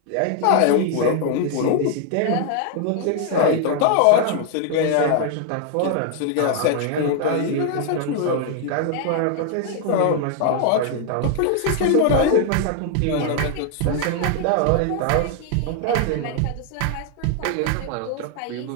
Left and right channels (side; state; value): both; different; correlation 0.00